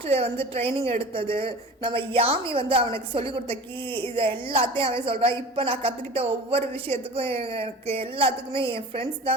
வந்து ட்ரைனிங் எடுத்தது, நம்ம யாமி வந்து அவனுக்கு சொல்லிக் கொடுத்த கீ, இதை எல்லாத்தையும் அவன் சொல்கிறான். இப்போ நான் கற்றுக்கிட்ட ஒவ்வொரு விஷயத்துக்கும் எனக்கு எல்லாத்துக்குமே என் ஃப்ரெண்ட்ஸ்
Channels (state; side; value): normal; both; correlation 0.38